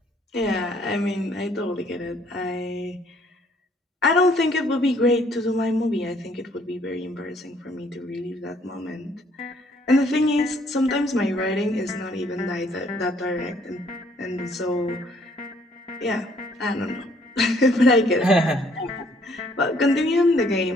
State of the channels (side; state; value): both; normal; correlation 0.64